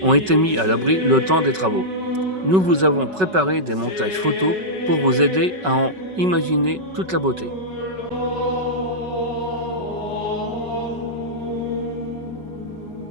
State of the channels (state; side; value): late; left; 5.3 ms